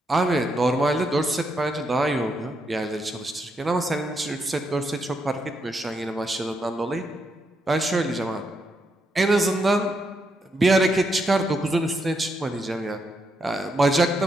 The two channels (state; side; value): normal; both; correlation 0.80